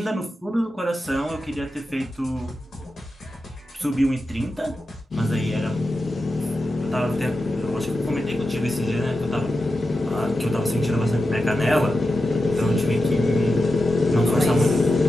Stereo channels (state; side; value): normal; both; correlation 0.90